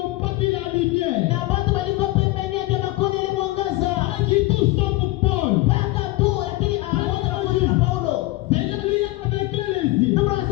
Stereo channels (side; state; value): right; quieter; 19.7 dB